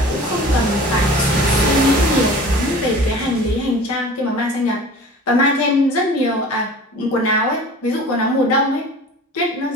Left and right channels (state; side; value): normal; both; correlation 0.41